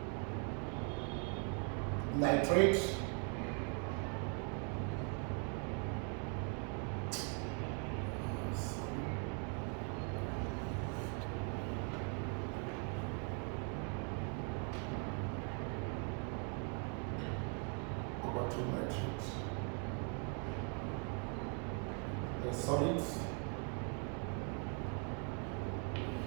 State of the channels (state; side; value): quieter; left; 39.5 dB